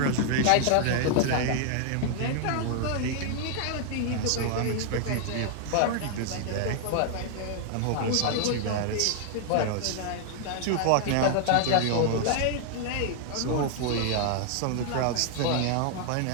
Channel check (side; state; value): both; different; correlation 0.00